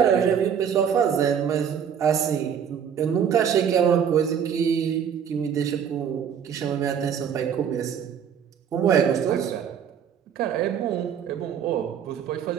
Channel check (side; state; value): left; quieter; 8.1 dB